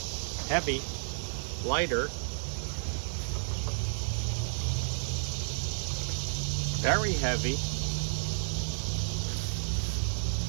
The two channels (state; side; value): silent; left; digital silence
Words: Heavy, lighter, very heavy,